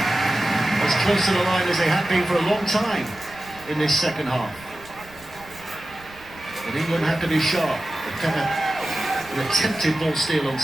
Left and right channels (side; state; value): right; noise; rumble, 23 dB below the sound